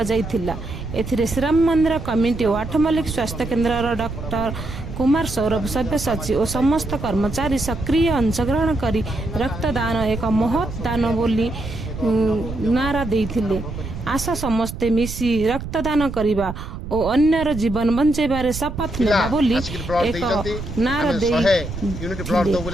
जाइथिला। एथिरे श्रीराम मंदिर कमिटी और 8 मल्लिक स्वास्थ्य केन्द्र डॉक्टर कुमार सौरभ सभ्य सचिव और समस्त कर्मचारी सक्रिय अंशग्रहण करी रक्तदान एक महत् दान बोली नारा देइथिले। आशा समस्ते मिसी रक्तदान करिबा और अन्यर जीवन बंचेबारे शपथ नेबा बोली एक नारा दे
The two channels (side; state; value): right; noise; rumble, 8 dB below the sound